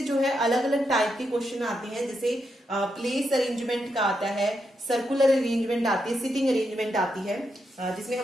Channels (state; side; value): normal; both; correlation 0.83